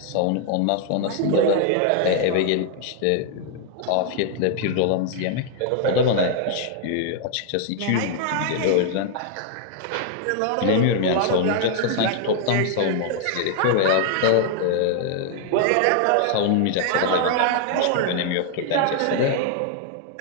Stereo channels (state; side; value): different; both; correlation 0.00